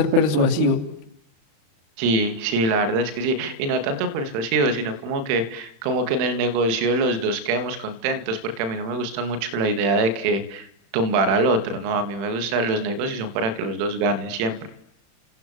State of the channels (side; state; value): left; late; 36 ms